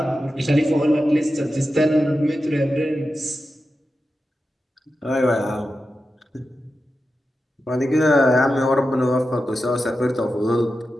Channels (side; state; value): both; normal; correlation 0.91